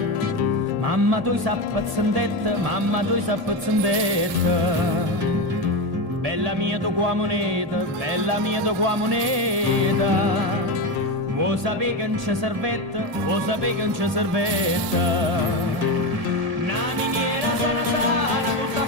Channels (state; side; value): late; left; 1.9 ms